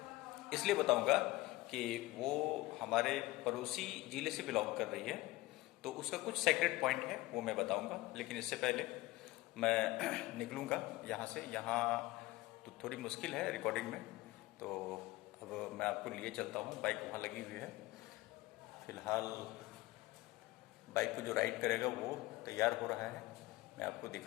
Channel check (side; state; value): right; quieter; 19.5 dB